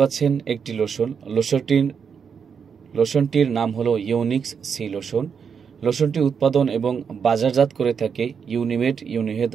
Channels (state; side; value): quieter; left; 6.6 dB